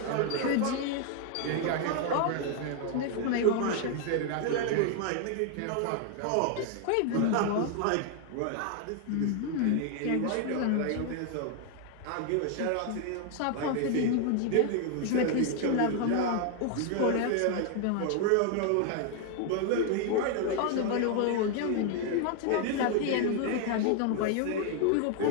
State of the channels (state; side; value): different; both; correlation 0.00